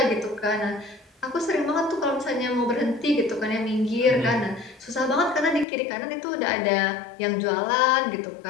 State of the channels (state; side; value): drops out; right; at 5.7 s